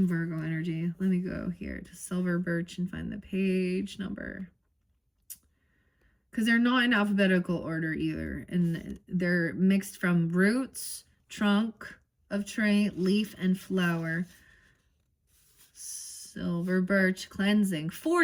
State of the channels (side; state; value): both; identical; correlation 1.00